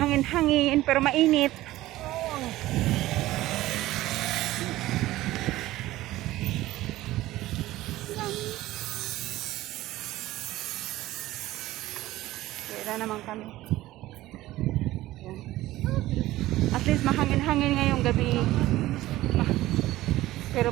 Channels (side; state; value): left; quieter; 16.4 dB